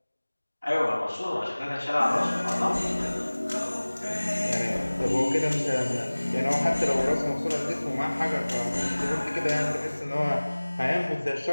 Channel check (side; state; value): both; inverted; correlation -1.00